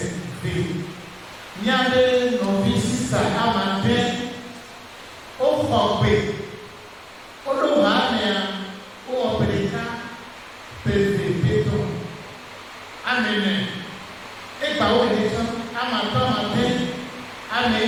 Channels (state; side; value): identical; both; correlation 1.00